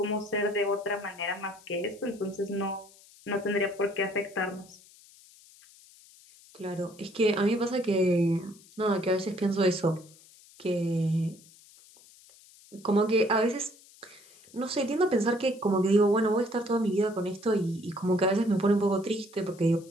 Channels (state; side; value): noise; left; hiss, 25 dB below the sound